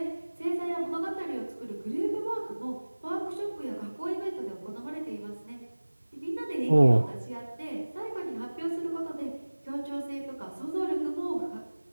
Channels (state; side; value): inverted; both; correlation -1.00